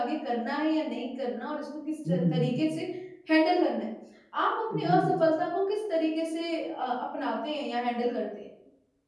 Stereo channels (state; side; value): identical; both; correlation 1.00